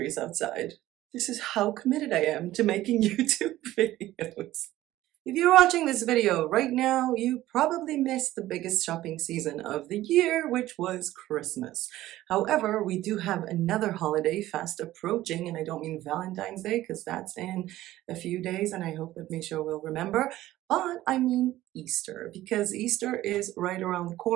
outside. This is how committed I am to making YouTube videos. If you're watching this video right now, you probably missed the biggest shopping season of the year, which was Christmas. However, we do have another holiday fast approaching, and I don't mean Valentine's Day because that's in a few days, and I hope that Misha will remember, but I mean Easter, because Easter is right around the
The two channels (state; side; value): quieter; left; 15.3 dB